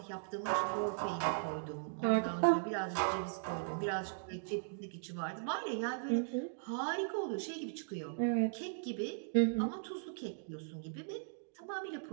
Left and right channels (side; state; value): left; silent; digital silence